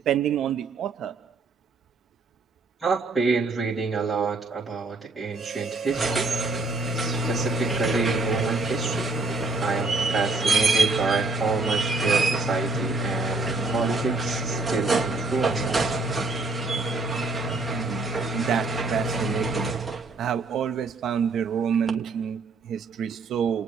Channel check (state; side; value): quieter; left; 3.6 dB